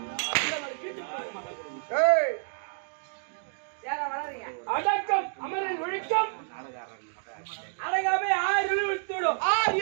அடக்கம் அமரில் ஒழிக்கும் அடங்காமை 6 இருள் வைத்து விடும் 6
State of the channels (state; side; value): silent; left; digital silence